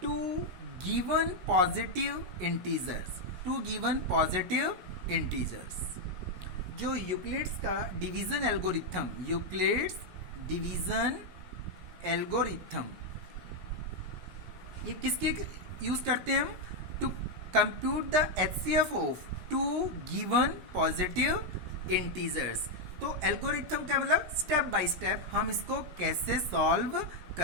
two given positive integers. Two given positive integers. जो यूक्लिड्स का division algorithm, Euclid's division algorithm, ये किसके यूज करते हैं हम? To compute the HCF of two given positive integers. तो एल्गोरिथम का मतलब स्टेप बाय स्टेप हम इसको कैसे सॉल्व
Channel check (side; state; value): left; late; 17 ms